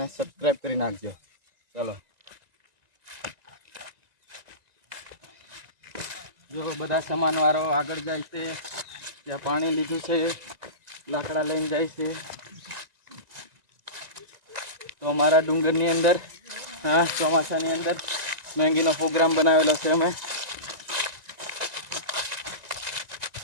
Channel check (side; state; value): left; late; 1.9 ms